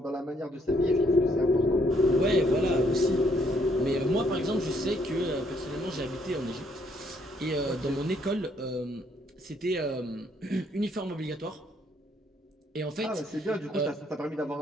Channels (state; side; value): normal; both; correlation 0.69